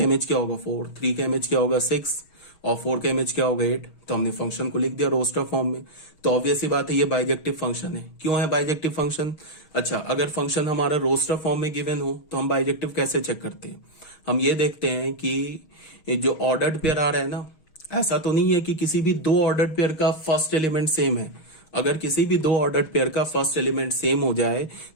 इमेज क्या होगा 4, 3 का इमेज क्या होगा 6, और 4 का इमेज क्या होगा 8। तो हमने फंक्शन को लिख दिया रोस्टर फॉर्म में। तो ऑब्वियस ही बात है ये बाइजेक्टिव फंक्शन है। क्यों है बाइजेक्टिव फंक्शन? अच्छा, अगर फंक्शन हमारा रोस्टर फॉर्म में गिवन हो तो हम बाइजेक्टिव कैसे चेक करते हैं? हम ये देखते हैं कि जो ऑर्डर्ड पेयर आ रहा है ना, ऐसा तो नहीं है कि किसी भी दो ऑर्डर्ड पेयर का फर्स्ट एलिमेंट सेम है। अगर किसी भी दो ऑर्डर्ड पेयर का फर्स्ट एलिमेंट सेम हो जाए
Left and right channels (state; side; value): late; right; 6.4 ms